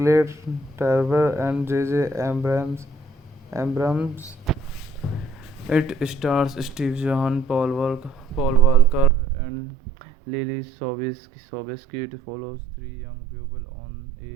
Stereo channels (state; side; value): drops out; left; at 9.1 s